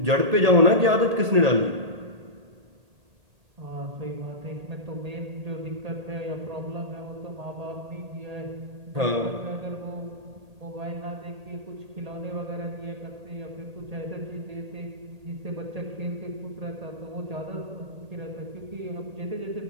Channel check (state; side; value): late; left; 1.8 ms